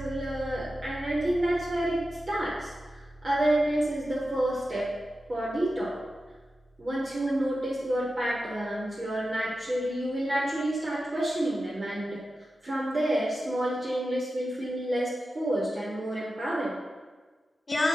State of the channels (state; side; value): normal; both; correlation 0.92